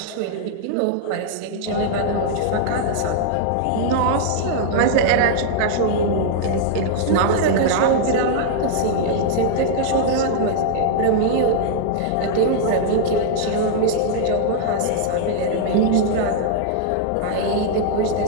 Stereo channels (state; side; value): different; both; correlation -0.01